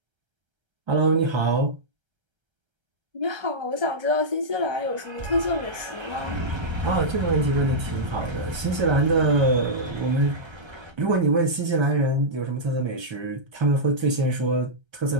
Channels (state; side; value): late; left; 1.3 ms